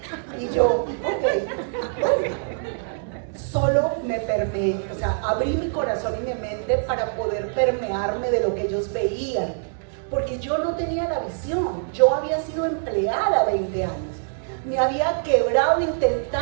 Y yo, ok, bueno. Solo me permeé, o sea, abrí mi corazón y mi mente para poder permearme de lo que ellos veían. porque yo no tenía la visión. Yo había sido empleada 20 años. Me había quebrado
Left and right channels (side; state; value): left; silent; digital silence